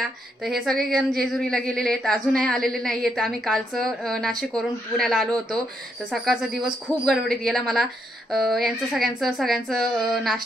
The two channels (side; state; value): both; normal; correlation 0.77